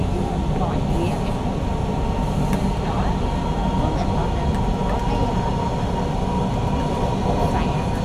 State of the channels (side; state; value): both; identical; correlation 1.00